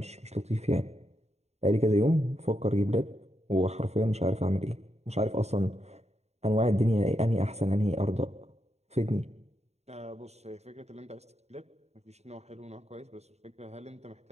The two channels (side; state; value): left; late; 0.32 ms